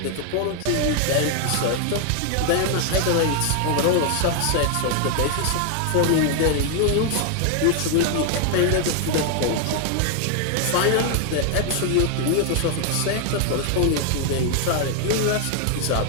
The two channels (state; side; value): different; both; correlation 0.00